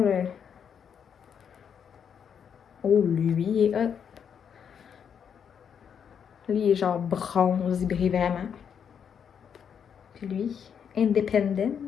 Oh, lui, il est hot. Lui, il est genre bronze, il brille vraiment. Puis lui,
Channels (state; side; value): quieter; right; 7.7 dB